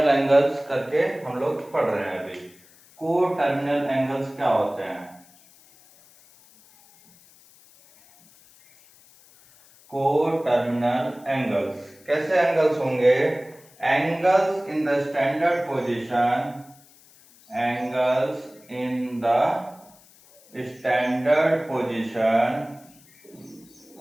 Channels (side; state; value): left; noise; hiss, 27 dB below the sound